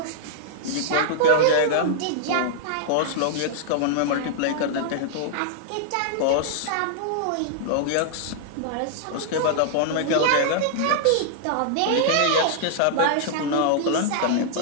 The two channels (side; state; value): both; different; correlation -0.01